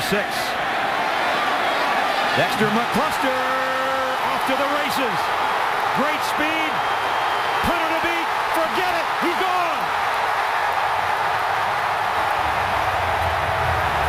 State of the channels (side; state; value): both; identical; correlation 1.00